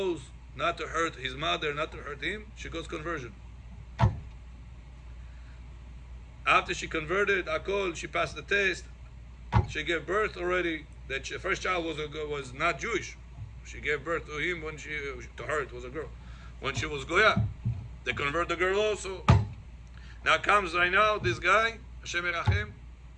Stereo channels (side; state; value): both; identical; correlation 1.00